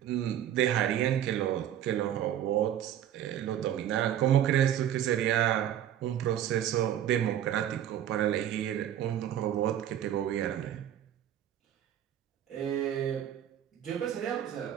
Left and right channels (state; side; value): quieter; left; 10.8 dB